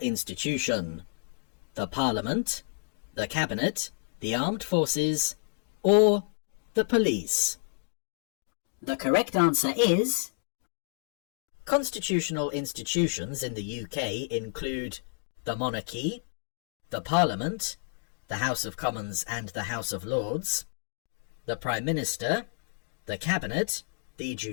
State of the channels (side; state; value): right; silent; digital silence